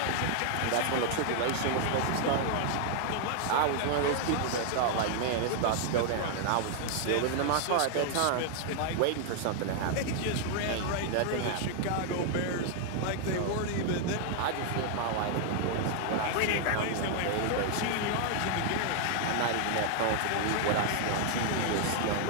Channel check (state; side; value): different; both; correlation 0.00